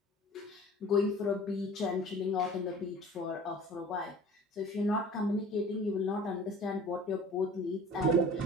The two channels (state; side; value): normal; both; correlation 0.44